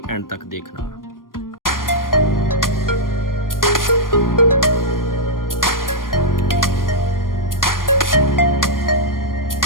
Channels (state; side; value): late; right; 0.91 ms